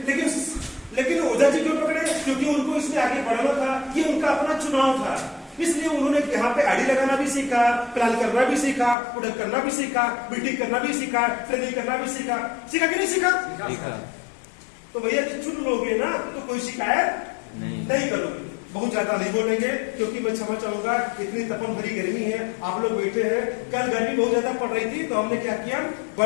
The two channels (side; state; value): right; drops out; at 9.0 s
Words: लेकिन ओझा जी क्यों पकड़े? क्योंकि उनको इसमें आगे बढ़ना था, ये उनका अपना चुनाव था। इसलिए उन्होंने यहाँ पे आईडी लगाना भी सीखा, प्लान करना भी सीखा, प्रोडक्ट करना भी सीखा, मीटिंग करना भी सीखा, ट्रेनिंग करना भी सीखा कि नहीं सीखा? तो भैया कि चुन लोगे ना तो कोई शिकायत नहीं करोगे। बहुत ज्यादा नहीं बोलेंगे क्योंकि मैं क्षमा चाहूंगा, इतनी तपन भरी गर्मी है, आप लोग बैठे हैं। कल गर्मी बहुत ज्यादा पड़ रही थी तो हमने क्या किया,